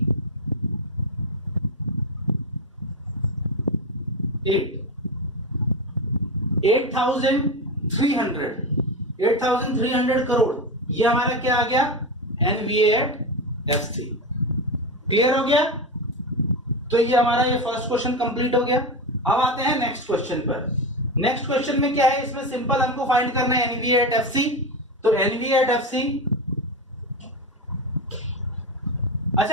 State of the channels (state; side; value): normal; both; correlation 0.17